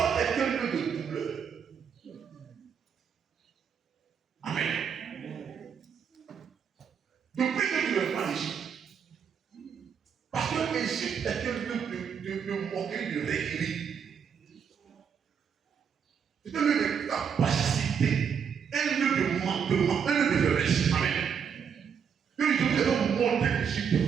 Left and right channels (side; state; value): left; quieter; 7.1 dB